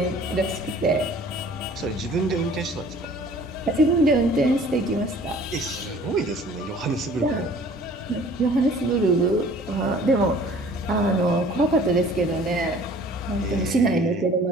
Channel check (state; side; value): normal; both; correlation 0.50